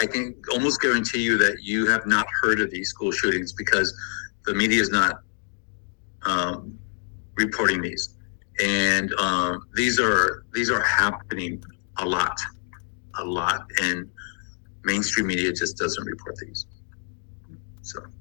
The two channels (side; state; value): right; silent; 56 dB below the other